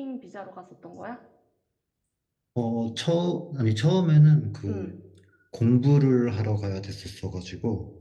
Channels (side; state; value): both; identical; correlation 1.00